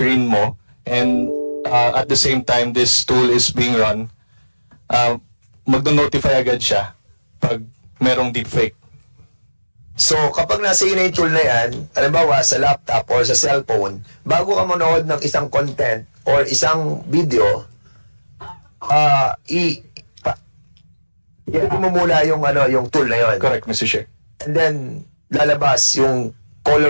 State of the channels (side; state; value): both; inverted; correlation -1.00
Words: mo, and at the same time this tool is being run, magno-notify agad siya pag merong deepfake. So, kapag nasa iyo na yung tool na yan, halimbawa sa laptop or sa cellphone, bago ka manood ng isang content or isang video, mo muna yung, yung tool na yun. Correct, Mr. Chair. And then, lalabas yung